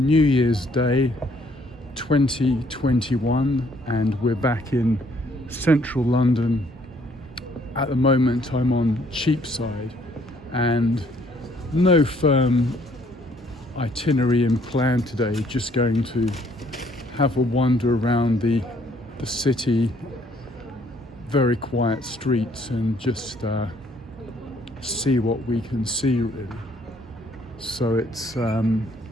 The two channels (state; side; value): normal; both; correlation 0.64